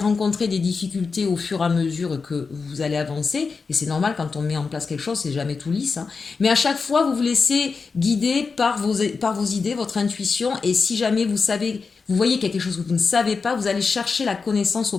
des difficultés au fur et à mesure que vous allez avancer, et c'est normal quand on met en place quelque chose, c'est jamais tout lisse, hein. Mais à chaque fois, vous vous laissez guider par vos idées, votre intuition, et si jamais vous savez, vous voyez quelque chose que vous ne savez pas, vous allez chercher la connaissance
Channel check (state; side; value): quieter; right; 4.8 dB